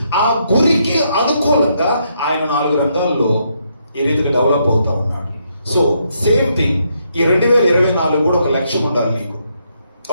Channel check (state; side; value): inverted; both; correlation -0.77